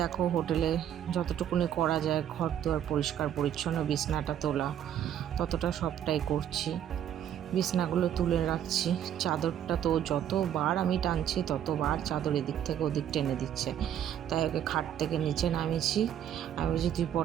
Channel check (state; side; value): quieter; left; 10.2 dB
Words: দেখো হোটেলে যতটুকুনি করা যায়, ঘর দুয়ার পরিষ্কার পরিচ্ছন্ন, বিছনাটা তোলা, ততটা সবটাই করছি। বিছনাগুলো তুলে রাখছি, চাদরটা তো যতবার আমি টানছি ততবার চাদর এদিক থেকে ওদিক টেনে দিচ্ছে। তাই ওকে খাট থেকে নিচে নামিয়েছি। আমি বলছি তুই